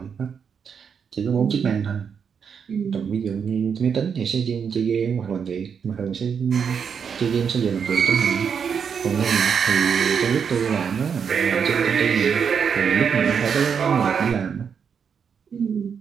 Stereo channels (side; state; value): left; quieter; 6.9 dB